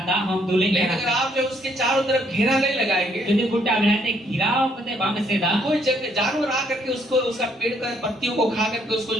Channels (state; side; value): normal; both; correlation 0.68